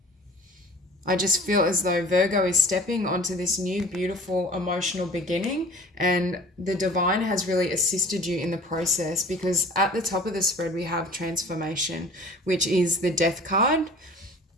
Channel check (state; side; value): normal; both; correlation 0.45